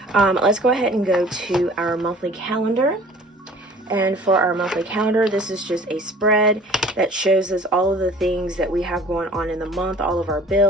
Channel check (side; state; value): both; normal; correlation 0.49